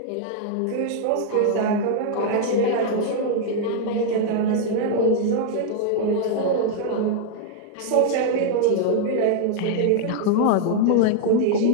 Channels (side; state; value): both; different; correlation 0.00